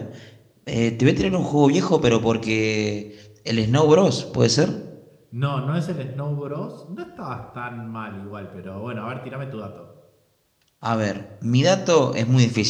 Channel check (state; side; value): identical; both; correlation 1.00